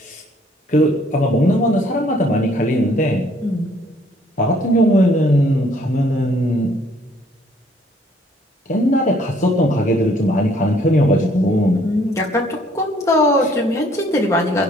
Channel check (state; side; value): normal; both; correlation 0.62